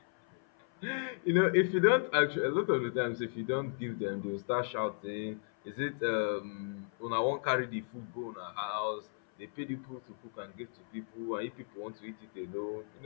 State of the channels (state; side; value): silent; right; 55 dB below the other